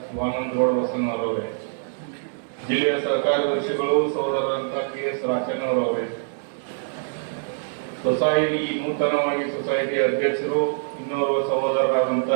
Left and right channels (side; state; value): left; silent; 62 dB below the other